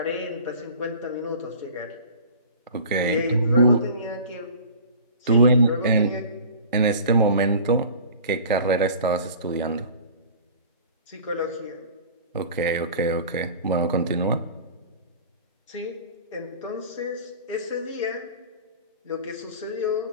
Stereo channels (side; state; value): both; inverted; correlation -0.42